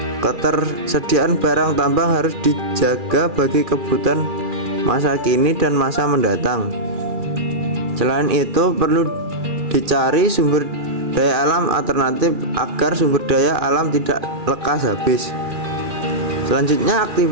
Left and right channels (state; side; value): late; left; 2.4 ms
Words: Ketersediaan barang tambang harus dijaga bagi kebutuhan masa kini dan masa mendatang. Selain itu, perlu dicari sumber daya alam alternatif agar sumber daya alam tidak lekas habis. Selanjutnya,